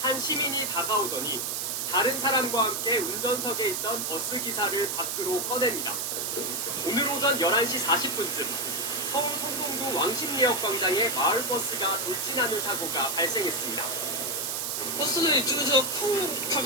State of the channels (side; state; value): right; noise; hiss, 1 dB below the sound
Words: 한 시민이 다가오더니 다른 사람과 함께 운전석에 있던 버스 기사를 밖으로 꺼냅니다. 오늘 오전 11시 40분쯤 서울 성동구 왕십리역 광장에 마을버스가 돌진하는 사고가 발생했습니다. 버스는 이쪽에서 쿵